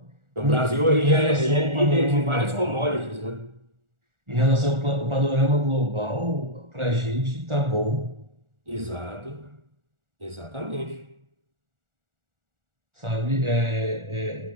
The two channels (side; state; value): left; late; 1.4 ms